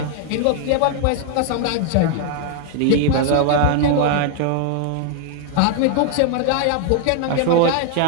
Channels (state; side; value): different; both; correlation 0.00